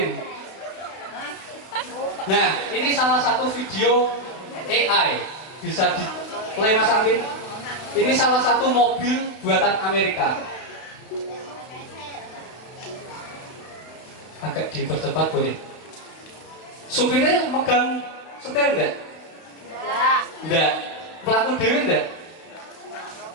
Nah, ini salah satu video AI. Bisa di play Mas Alvin. Ini salah satu mobil buatan Amerika. Agak dipercepat boleh. Supirnya megang setir enggak? Enggak. Pelaku dewi enggak?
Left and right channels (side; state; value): right; late; 31 ms